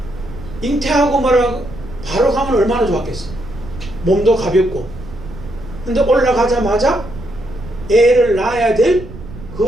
잉태하고 말하고 바로 가면 얼마나 좋았겠어. 몸도 가볍고. 근데 올라가자마자 애를 낳아야 될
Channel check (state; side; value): noise; right; rumble, 14 dB below the sound